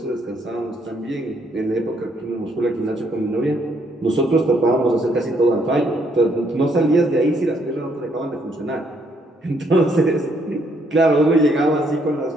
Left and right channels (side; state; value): both; normal; correlation 0.70